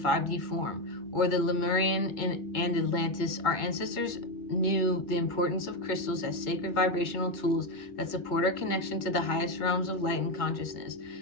form, or the Lemurian and Atlantis. Our ancestors knew the importance of crystals as sacred vibrational tools that support our connection to the highest realms of light and consciousness.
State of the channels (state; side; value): late; right; 2.2 ms